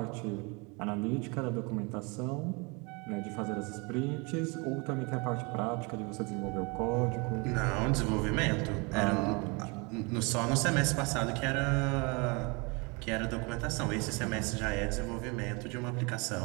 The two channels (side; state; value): left; quieter; 29.4 dB